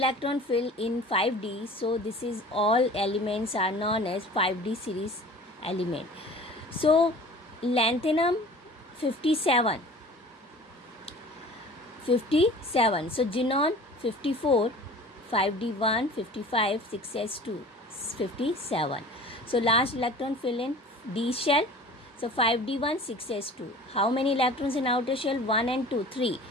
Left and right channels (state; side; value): normal; both; correlation 0.43